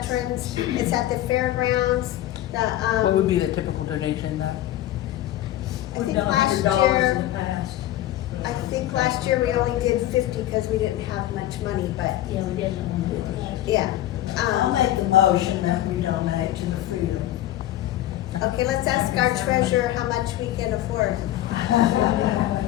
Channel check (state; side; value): quieter; right; 13.9 dB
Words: It's at the fairgrounds. What would be the typical donation then? I think We've done last $100 year, in the past. I think last year we only did 50 because we didn't have much money, but Yeah, we did. yeah. I'll make the motion that we donate to the Freedom. Okay, let's ask our treasurer how much we can afford.